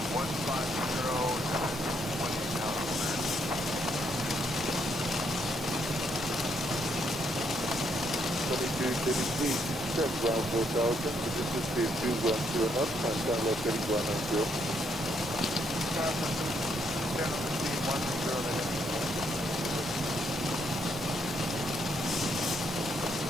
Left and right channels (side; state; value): both; normal; correlation 0.74